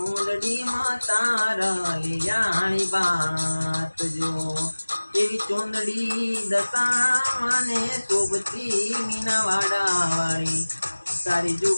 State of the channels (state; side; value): inverted; both; correlation -1.00